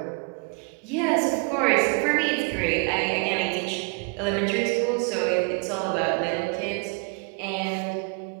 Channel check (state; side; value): quieter; left; 36.7 dB